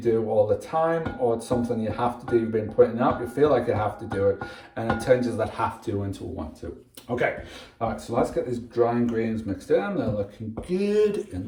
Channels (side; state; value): both; identical; correlation 1.00